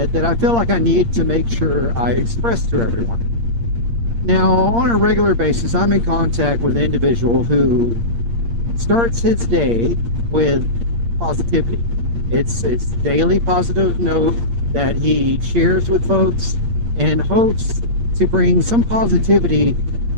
that I feel like I need to make sure I express to everyone. Now, on a regular basis, I'm in contact with an individual who starts his day with positivity. It's daily positive note that he shares with folks and hopes to bring some positivity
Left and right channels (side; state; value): left; late; 8.6 ms